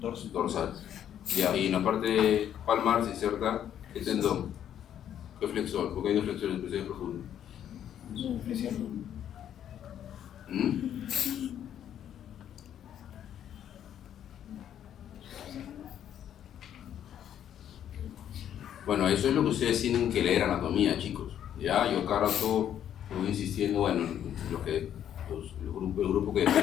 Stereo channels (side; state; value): right; quieter; 10.1 dB